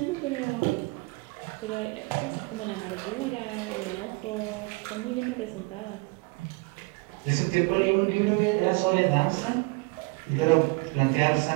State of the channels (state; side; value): quieter; left; 26.7 dB